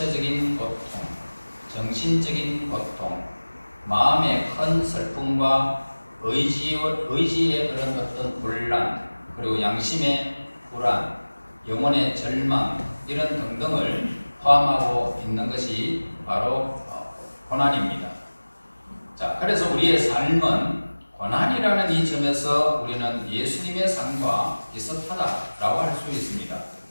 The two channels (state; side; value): inverted; both; correlation -1.00